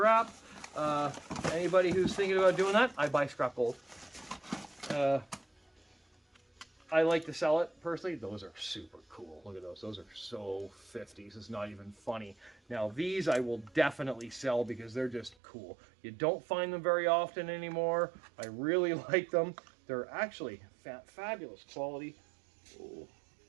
Anybody who's thinking about doing that, I buy scrap gold. I like to sell it personally. Those are super cool. Look at those. Those are so 50s. It's not even funny. Now these I will definitely sell because they're just cool. You don't find them very often anymore. I really like them. They're actually fabulous quality. Oh.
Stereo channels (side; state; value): left; drops out; at 15.4 s